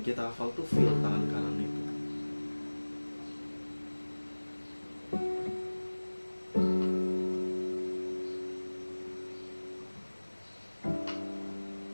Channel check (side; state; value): both; inverted; correlation -1.00